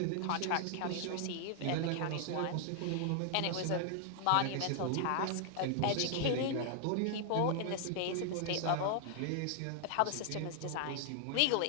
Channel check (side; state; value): both; different; correlation 0.00